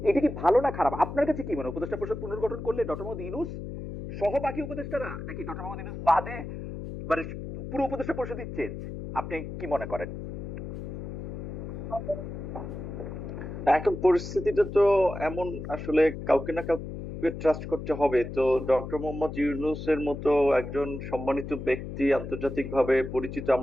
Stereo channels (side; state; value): left; noise; hum, 8 dB below the sound